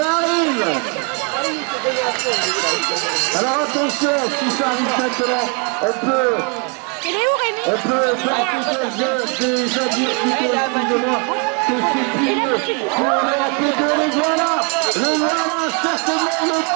arrive. Alors attention, si ça arrive maintenant, on peut faire déjà dire plutôt, excusez-moi, que c'est plié pour l'APB. Les voilà, certainement le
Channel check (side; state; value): left; quieter; 34.5 dB